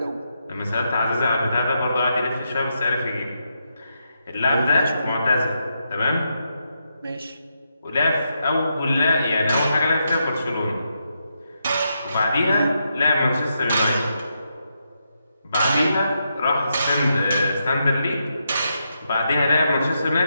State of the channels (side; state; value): both; inverted; correlation -0.82